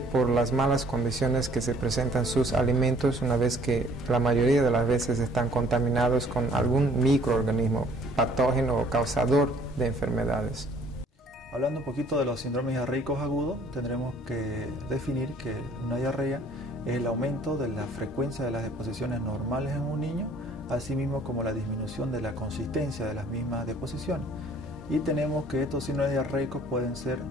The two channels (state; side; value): normal; both; correlation 0.57